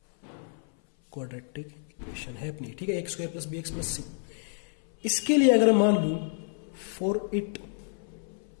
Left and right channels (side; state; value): right; silent; 58 dB below the other